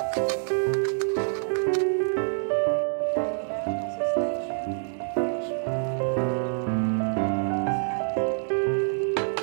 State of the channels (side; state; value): left; silent; digital silence